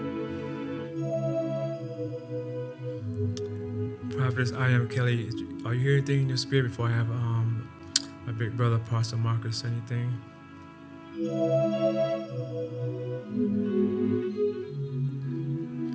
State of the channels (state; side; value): identical; both; correlation 1.00